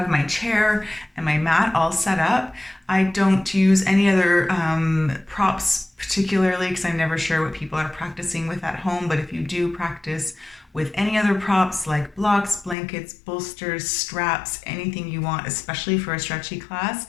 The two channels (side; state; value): right; drops out; at 12.8 s